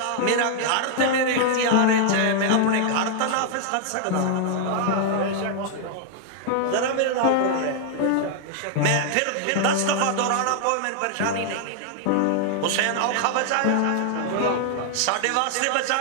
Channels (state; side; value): different; both; correlation 0.00